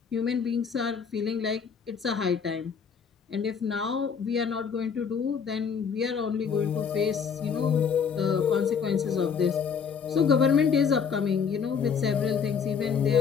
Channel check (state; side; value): quieter; right; 6.5 dB